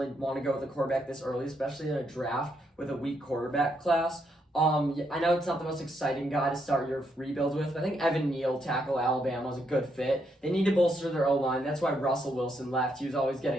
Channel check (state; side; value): normal; both; correlation 0.77